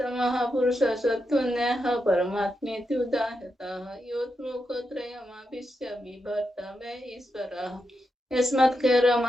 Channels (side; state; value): both; normal; correlation 0.86